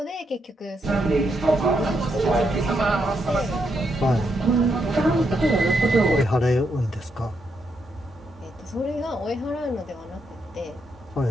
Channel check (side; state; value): both; normal; correlation 0.80